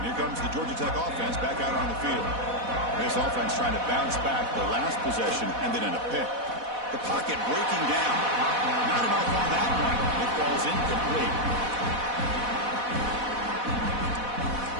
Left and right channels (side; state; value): left; late; 4.1 ms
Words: here comes the Georgia Tech offense back out on the field. This offense trying to bounce back the last possession and then in a pick. The pocket breaking down. Not enough on that one. It falls incomplete.